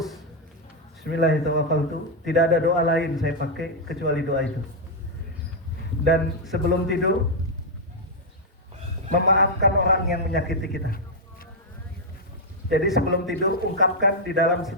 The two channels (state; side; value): normal; both; correlation -0.02